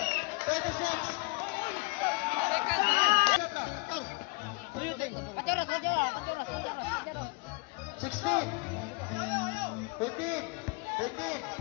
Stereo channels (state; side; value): quieter; right; 27.5 dB